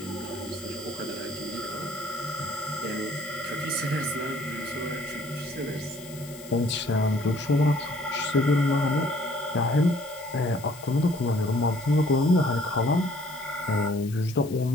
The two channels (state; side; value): noise; left; hiss, 18 dB below the sound